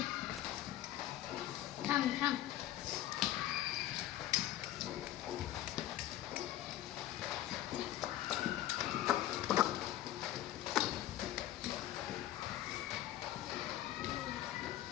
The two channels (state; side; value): quieter; right; 13.6 dB